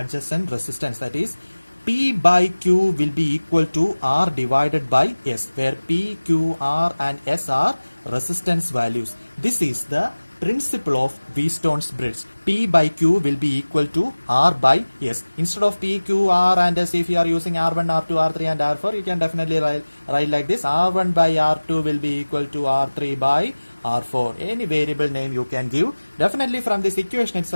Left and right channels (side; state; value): both; inverted; correlation -1.00